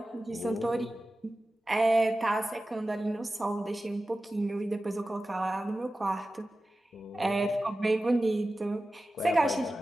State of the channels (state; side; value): normal; both; correlation 0.95